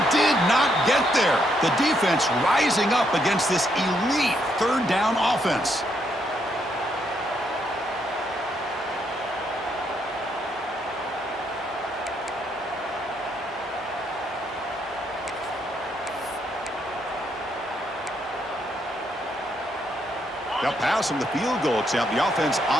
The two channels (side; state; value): both; normal; correlation 0.75